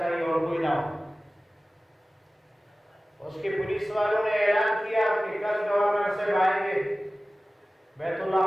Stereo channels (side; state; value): both; normal; correlation 0.97